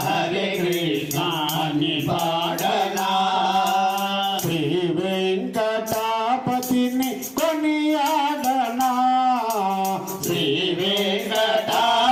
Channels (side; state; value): both; identical; correlation 1.00